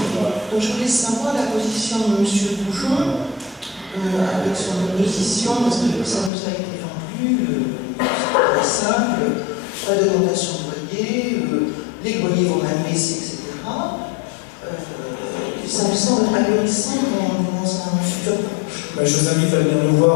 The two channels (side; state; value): right; drops out; at 6.3 s